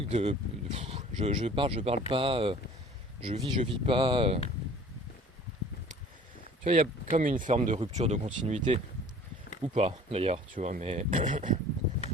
de je parle pas, je vis pas. Tu vois, il y a comme une forme de rupture de continuité, ou pas d'ailleurs, tu vois, mais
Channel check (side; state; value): both; normal; correlation 0.48